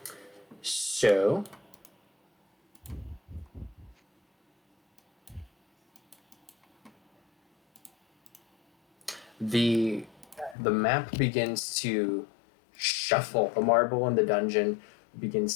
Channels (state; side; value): drops out; right; at 10.6 s